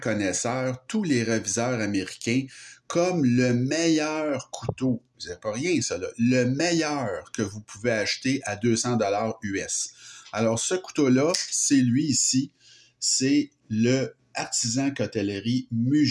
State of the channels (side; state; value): both; identical; correlation 1.00